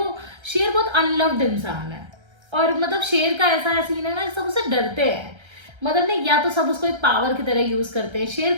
शेर बहुत अनलव्ड इंसान है, और मतलब शेर का ऐसा सीन है ना, सब उससे डरते हैं। मतलब नहीं, या तो सब उसको एक पावर की तरह यूज करते हैं। शेर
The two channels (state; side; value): late; left; 1.3 ms